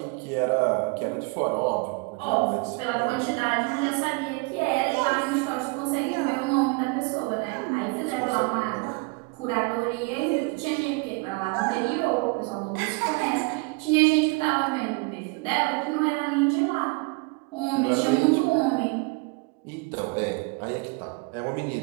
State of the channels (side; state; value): left; quieter; 28.7 dB